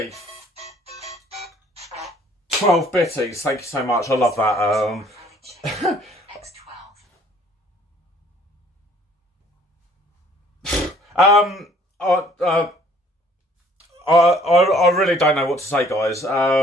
12 bitties, thank you so much. I love that. I really don't know what to say, guys.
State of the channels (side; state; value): both; normal; correlation 0.58